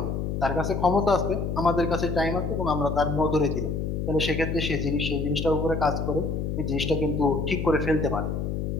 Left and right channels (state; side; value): noise; left; hum, 2 dB below the sound